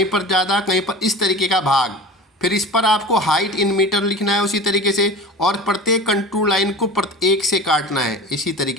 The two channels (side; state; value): both; normal; correlation 0.34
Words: पर ज़्यादा, कहीं पर इस तरीके का भाग। फिर इस पर आपको हाइट इन मीटर लिखना है उसी तरीके से, और प्रत्येक कंटूर लाइन को एक से काटना है इसी